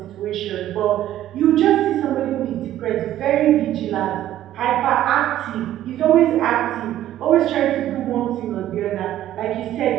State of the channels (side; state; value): left; quieter; 12.8 dB